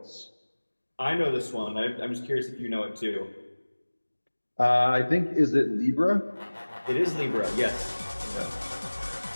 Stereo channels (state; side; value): inverted; both; correlation -1.00